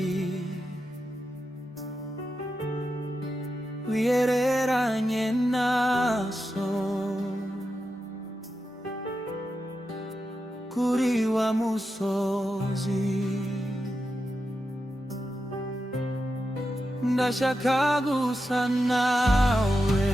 wiyereranye naso kuri wa musozi. Ndashaka gusa nawe,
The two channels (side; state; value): both; normal; correlation 0.89